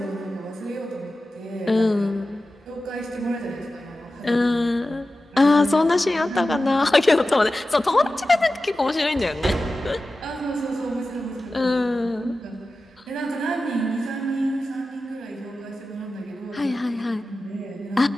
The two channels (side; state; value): both; normal; correlation 0.94